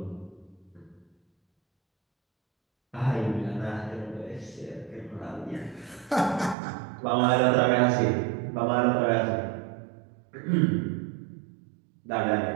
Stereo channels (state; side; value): drops out; left; at 6.6 s